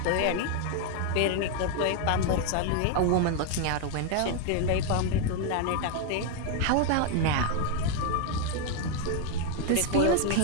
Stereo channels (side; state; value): both; different; correlation 0.01